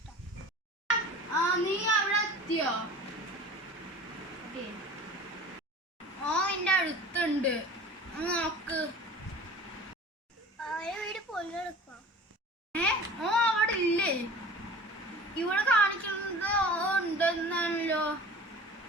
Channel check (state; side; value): normal; both; correlation 0.41